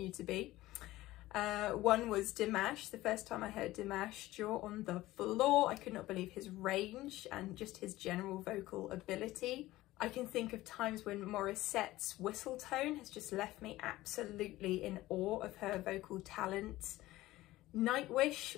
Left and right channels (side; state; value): right; quieter; 17.0 dB